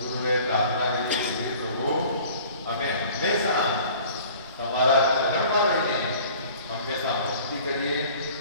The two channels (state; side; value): inverted; both; correlation -0.48